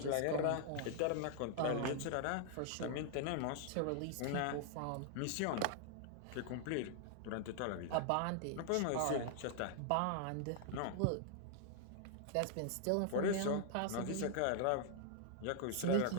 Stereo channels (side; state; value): both; different; correlation -0.01